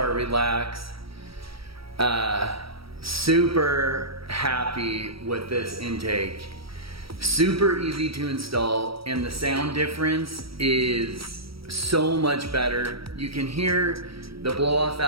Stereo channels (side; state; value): left; late; 0.75 ms